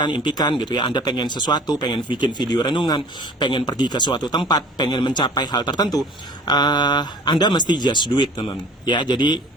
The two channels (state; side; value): normal; both; correlation 0.46